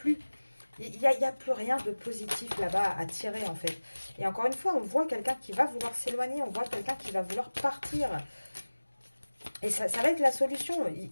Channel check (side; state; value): both; inverted; correlation -1.00